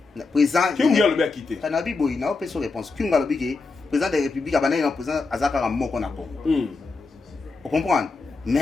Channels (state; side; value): quieter; right; 4.0 dB